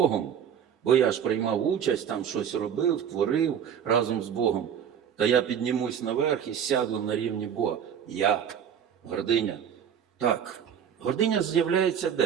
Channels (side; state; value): left; quieter; 8.4 dB